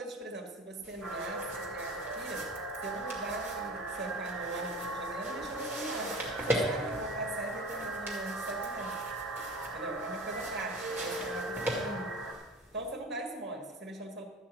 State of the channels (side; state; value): both; normal; correlation 0.36